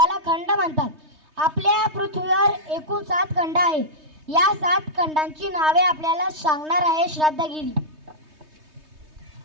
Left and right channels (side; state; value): left; late; 3.2 ms